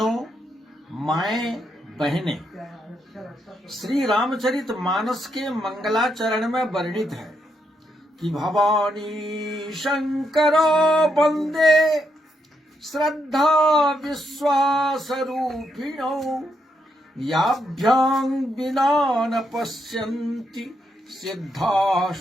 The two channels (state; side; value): normal; both; correlation 0.79